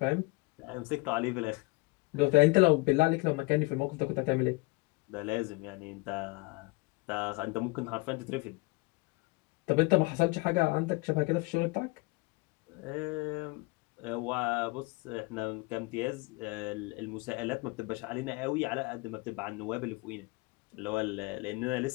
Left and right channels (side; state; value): right; quieter; 25.3 dB